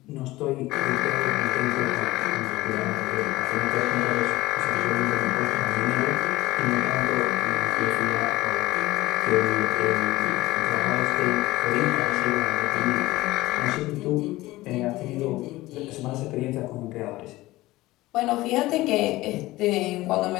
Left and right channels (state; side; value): quieter; right; 18.4 dB